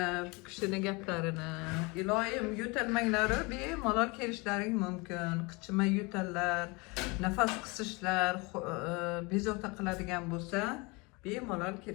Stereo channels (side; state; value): right; quieter; 27.2 dB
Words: bu kishini gaplarini. Iloyim, yo'talmanglari bemalol kelishlaring mumkin. Qichima yo'tallar, nafas qisishlar, bezovta qiladigan bo'lsa, bemalol